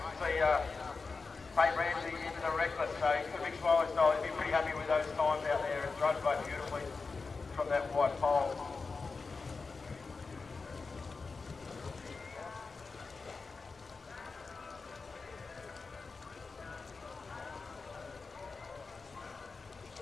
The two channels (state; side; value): quieter; right; 4.4 dB